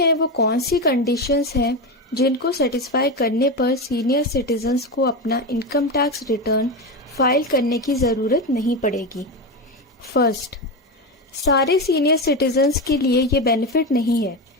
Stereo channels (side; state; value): both; normal; correlation 0.16